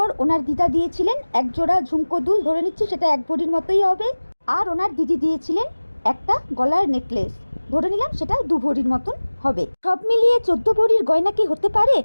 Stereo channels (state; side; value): inverted; both; correlation -1.00